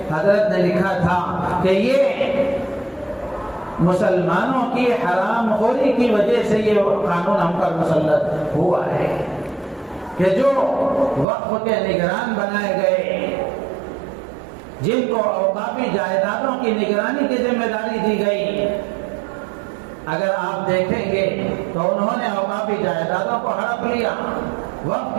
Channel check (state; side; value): drops out; left; at 11.2 s